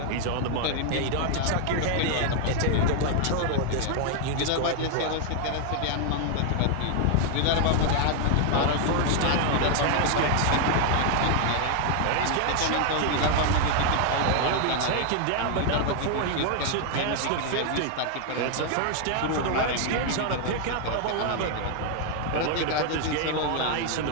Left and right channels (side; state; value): both; different; correlation 0.00